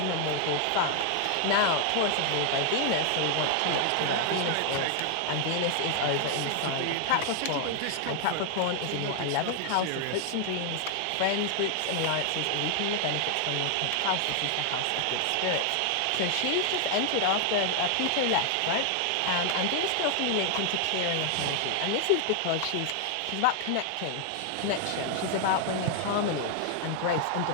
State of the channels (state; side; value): different; both; correlation 0.00